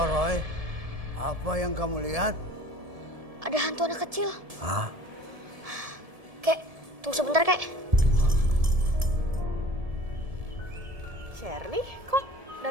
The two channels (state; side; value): late; left; 1.7 ms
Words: Roy? Apa yang kamu lihat? Ada hantu anak kecil. Hah? Kek, tunggu sebentar, Kek. Shirley, kok